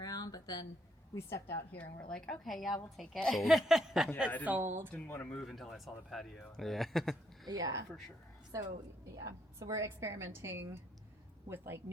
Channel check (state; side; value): normal; both; correlation 0.73